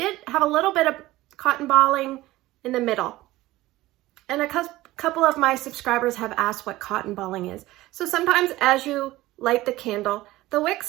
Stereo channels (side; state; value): left; quieter; 17.6 dB